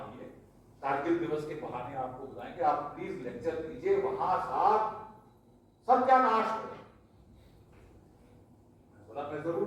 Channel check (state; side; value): identical; both; correlation 1.00